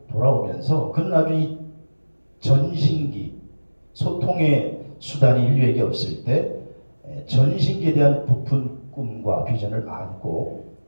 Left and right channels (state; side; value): inverted; both; correlation -1.00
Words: 돌아오면서 그는 아주 이 전신기, 소통의 수단이 인류에게 없을 때 전신기에 대한 부푼 꿈과 비전을 안고